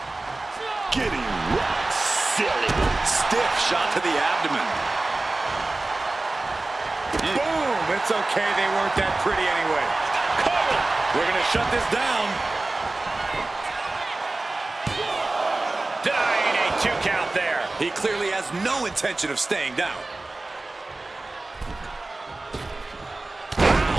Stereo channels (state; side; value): quieter; left; 3.1 dB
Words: Getting rock silly. Stiff shot to the abdomen. Boom! It's okay, they weren't that pretty anyway. Cover. We're gonna shut this down. Denying a 2 2 count there. He clearly has no intention of staying down.